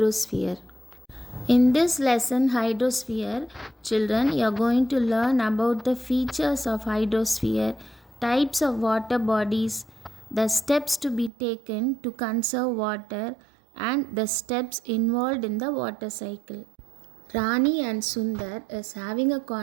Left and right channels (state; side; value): drops out; left; at 11.3 s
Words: In this lesson Hydrosphere, children, you are going to learn about the features of hydrosphere, types of water bodies, the steps to be taken to conserve water and the steps involved in the water cycle. Rani and Sundar is having a